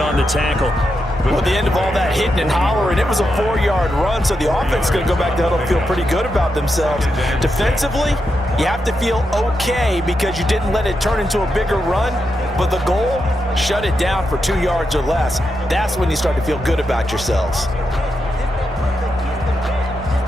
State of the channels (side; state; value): both; normal; correlation 0.85